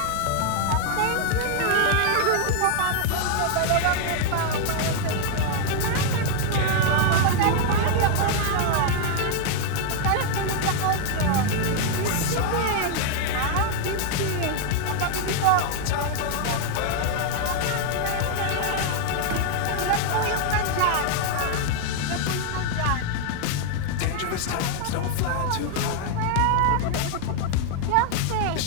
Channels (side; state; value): both; different; correlation 0.00